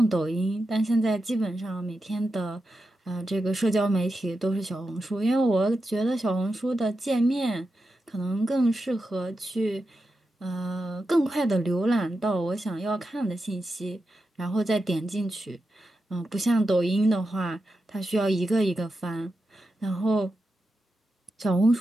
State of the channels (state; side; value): normal; both; correlation 0.89